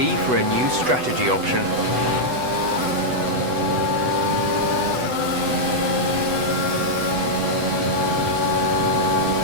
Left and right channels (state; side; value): late; left; 8.0 ms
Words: for a new strategy option.